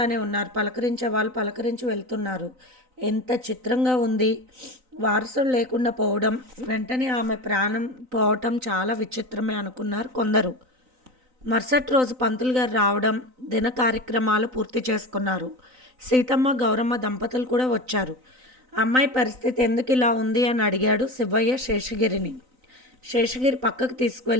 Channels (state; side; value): late; left; 3.9 ms